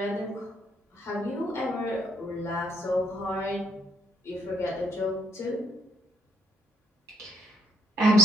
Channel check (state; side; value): normal; both; correlation 0.70